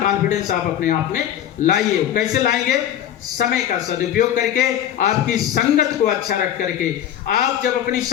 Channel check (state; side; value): quieter; right; 10.8 dB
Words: कॉन्फिडेंस आप अपने आप में लाइए। कैसे लाएंगे? समय का सदुपयोग करके, आपकी संगत को अच्छा रख करके। आप जब अपनी